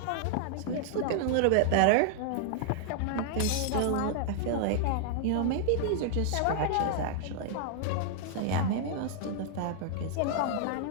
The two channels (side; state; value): both; different; correlation -0.01